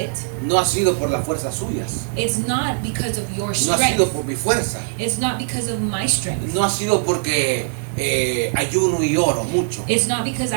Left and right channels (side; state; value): left; silent; 64 dB below the other